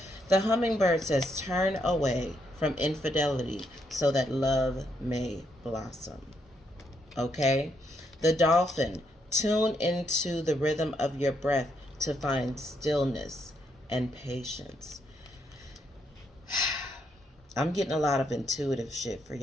The hummingbird says, turn away from infidelity so that love may blossom. Okay? The dolphin, tune into the rhythm of your breath to find stillness and patience. I'm getting a lot of intuitive shit for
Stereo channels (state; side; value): normal; both; correlation 0.77